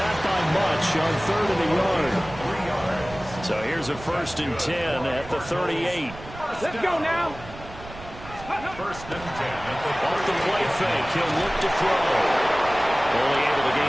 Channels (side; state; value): right; noise; rumble, 15 dB below the sound